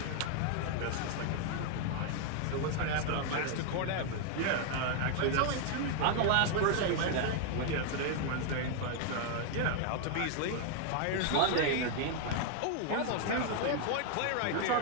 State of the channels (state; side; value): different; both; correlation 0.00